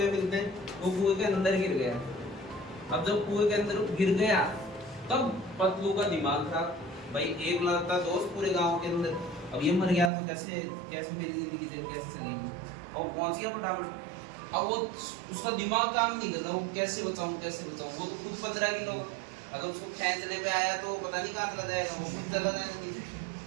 मिलते हैं, वो कुएं के अंदर गिर गया। अब जब कुएं के अंदर गिर गया तब पतलू का दिमाग खराब। भाई एक लड़ता दोस्त पूरे गांव के अंदर, अब ये मर गया तो कैसे कैसे मेरी जिंदगी कैसे चलेगी। अब पहुंच गया फटाफट। अब वो उसका दिमाग काम नहीं कर रहा, वो कैसे बचाऊं कैसे बचाऊं। वो तो खुद 15 किलो, अगर उसको खींचने पे आया तो पता नहीं कहाँ चला जाएगा, वो खुद चला जाएगा नीचे।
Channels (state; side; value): drops out; left; at 10.1 s